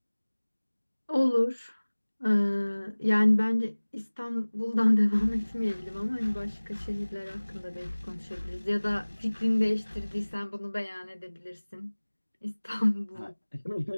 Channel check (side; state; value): both; inverted; correlation -1.00